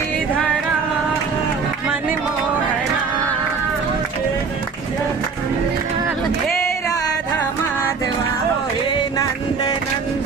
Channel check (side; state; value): left; quieter; 5.2 dB